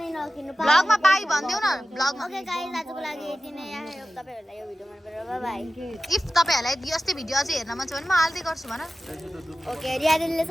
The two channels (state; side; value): normal; both; correlation 0.94